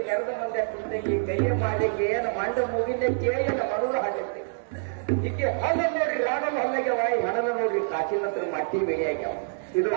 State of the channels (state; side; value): silent; left; digital silence